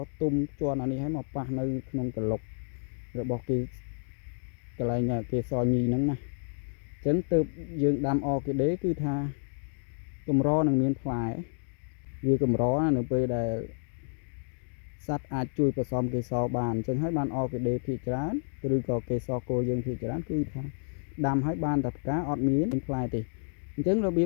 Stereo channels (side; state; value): right; silent; digital silence